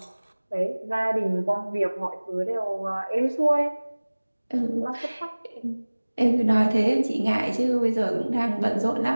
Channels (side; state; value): both; inverted; correlation -1.00